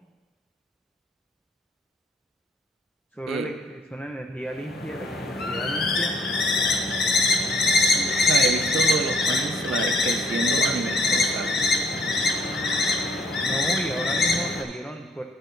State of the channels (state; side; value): normal; both; correlation 0.65